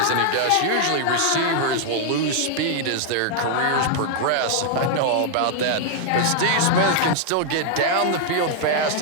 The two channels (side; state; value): both; different; correlation 0.00